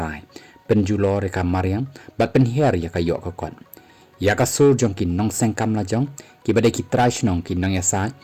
pen julo re ka mariang bat pen her ya ka yok ka kon ya ka sur jong ki nong seng kam la jong ki badai ki trash nong ki nong ya sa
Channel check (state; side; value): identical; both; correlation 1.00